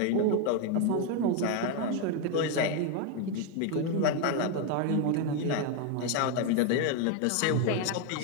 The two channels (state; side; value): different; both; correlation 0.01